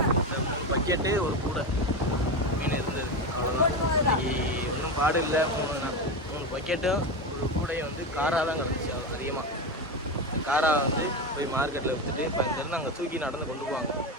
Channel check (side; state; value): both; normal; correlation 0.18